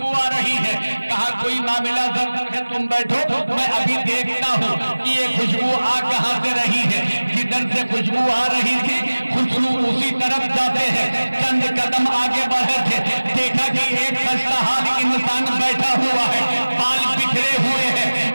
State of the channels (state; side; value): inverted; both; correlation -1.00